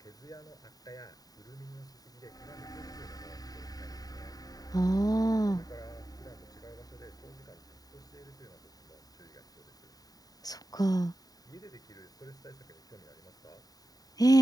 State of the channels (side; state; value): right; late; 0.18 ms